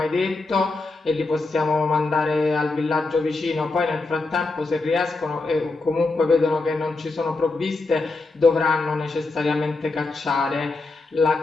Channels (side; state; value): right; quieter; 3.5 dB